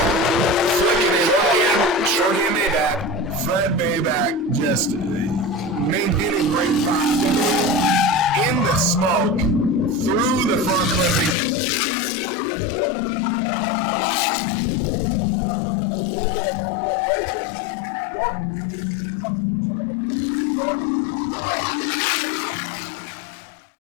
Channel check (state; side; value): drops out; right; at 11.4 s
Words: Flicking it in. Shorkey and Maybach. Fred Maybach just maintaining great proximity in the smoke through the front clipping zone. Really working hard to stay on Shorkey. Nice little bit of rough foot braking. Shorkey seems like he's having a little bit of trouble with the grip of the car for some reason.